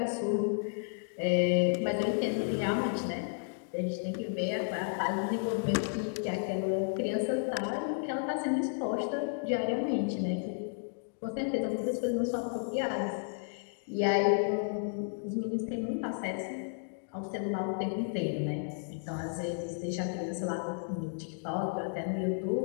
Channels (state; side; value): silent; right; digital silence